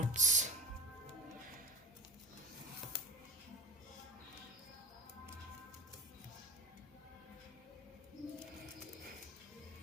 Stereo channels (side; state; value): both; normal; correlation 0.34